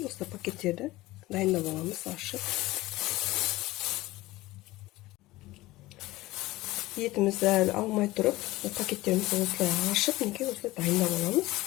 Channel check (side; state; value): right; quieter; 18.5 dB